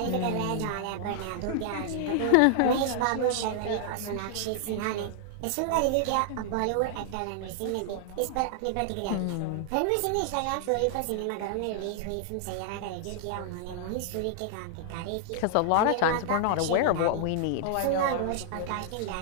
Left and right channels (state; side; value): different; both; correlation -0.01